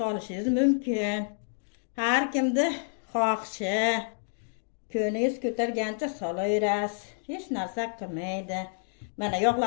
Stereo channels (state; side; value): silent; right; digital silence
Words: mumkin. Har kimni xohishi, ko'ningiz ko'targancha solaverasiz. Hech narsa qilmaydi. Mana